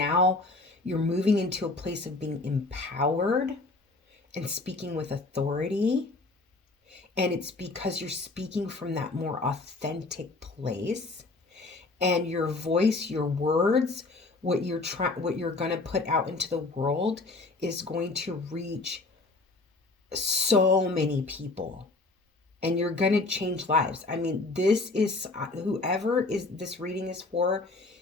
you're moving into a place of being empowered and speaking with authority, And it's because you're speaking from that more authentic place, and your voice, your words, what you're going to put out into the world is going to reach so many people, and you're going to change lives. I mean, this is whoever is this reading is for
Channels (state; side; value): quieter; right; 3.3 dB